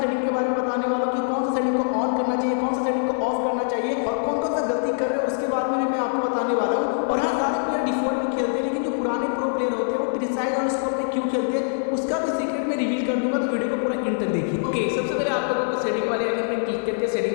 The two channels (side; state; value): right; silent; digital silence